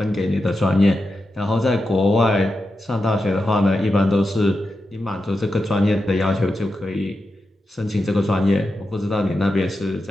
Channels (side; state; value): both; normal; correlation 0.89